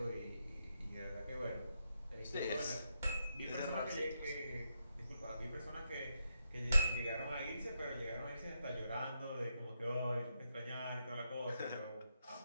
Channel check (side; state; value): both; inverted; correlation -0.83